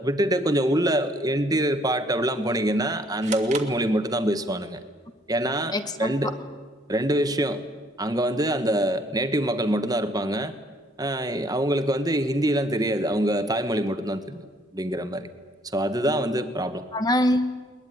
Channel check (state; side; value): normal; both; correlation 0.64